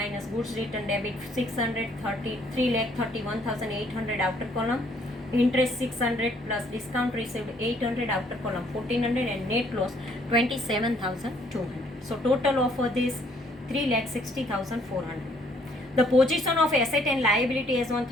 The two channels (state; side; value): normal; both; correlation 0.64